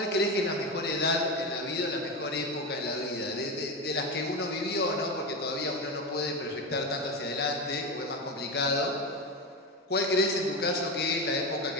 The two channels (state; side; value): normal; both; correlation 0.18